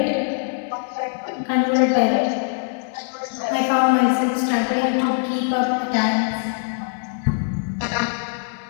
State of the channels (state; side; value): silent; right; 64 dB below the other